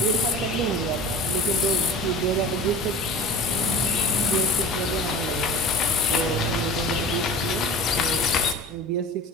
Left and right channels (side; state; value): both; normal; correlation 0.38